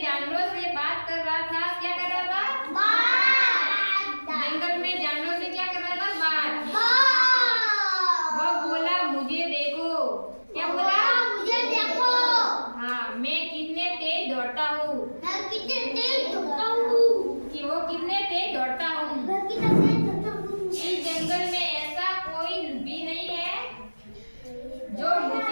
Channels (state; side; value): inverted; both; correlation -1.00